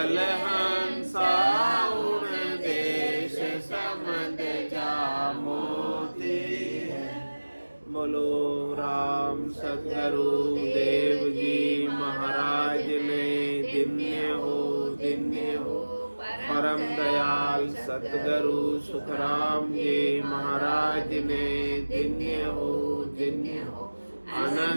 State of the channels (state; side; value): inverted; both; correlation -1.00